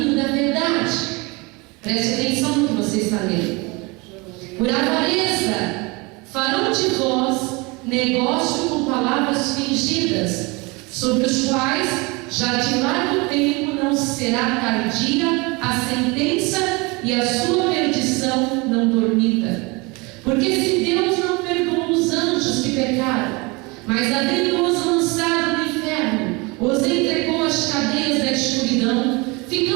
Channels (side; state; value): left; quieter; 26.6 dB